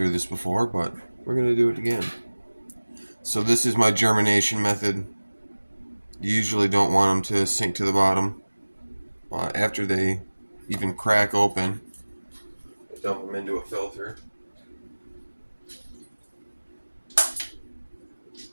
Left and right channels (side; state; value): both; inverted; correlation -1.00